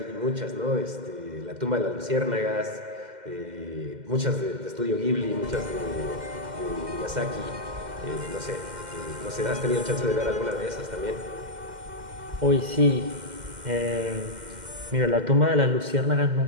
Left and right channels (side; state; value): left; late; 2.1 ms